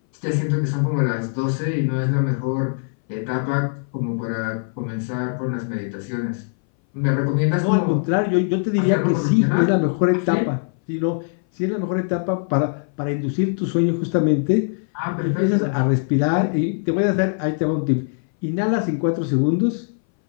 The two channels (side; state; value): right; silent; 60 dB below the other